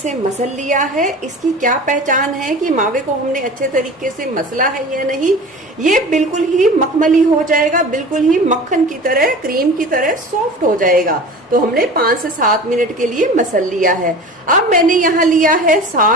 मसल लिया है। इसकी क्या पहचान है कि मावे को हमने अच्छे तरीके से मसला है या नहीं। ये बिल्कुल ही मखमली हो जाएगा, बिल्कुल ही मक्खन की तरह, क्रीम की तरह सॉफ्ट हो जाएगा। तो हमने 5 से 7 मिनट के लिए मसल लिया है। अब मैंने यहाँ लिया है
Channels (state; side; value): normal; both; correlation 0.37